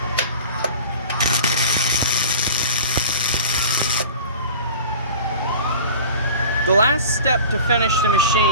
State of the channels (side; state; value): both; inverted; correlation -0.41